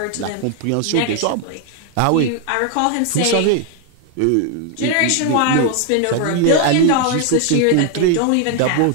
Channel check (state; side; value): different; both; correlation 0.00